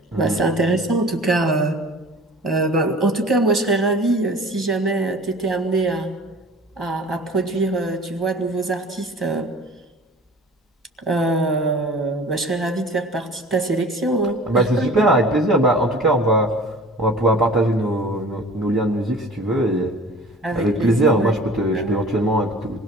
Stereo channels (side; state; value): both; normal; correlation 0.44